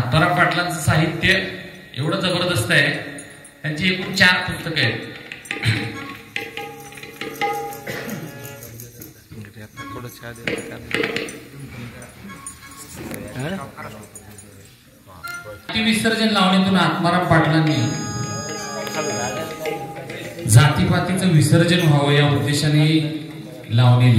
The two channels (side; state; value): both; identical; correlation 1.00